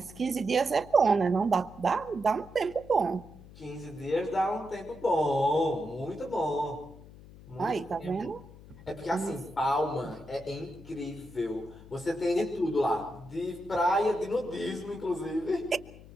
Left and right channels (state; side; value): noise; left; hum, 19 dB below the sound